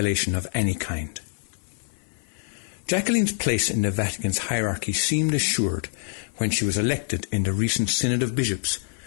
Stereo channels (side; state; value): right; silent; 58 dB below the other